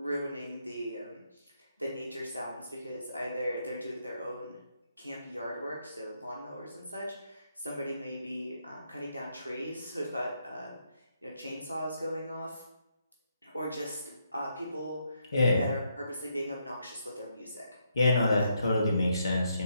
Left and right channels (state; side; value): inverted; both; correlation -0.77